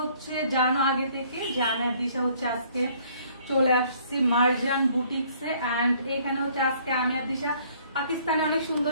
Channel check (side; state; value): both; inverted; correlation -0.60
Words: জানো আগে থেকে জানার দিশা হচ্ছে আজকে চলে আসছি মার্জান বুটিক্সে। এন্ড এখানে হচ্ছে আজকে আমি আর দিশা পাকিস্তানে অনেক